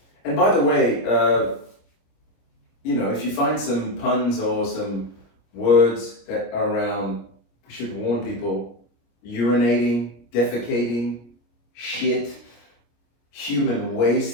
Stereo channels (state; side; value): late; right; 25 ms